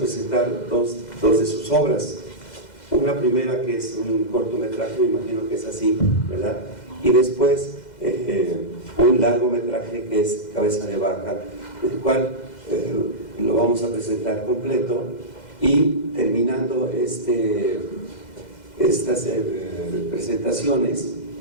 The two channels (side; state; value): right; late; 2.0 ms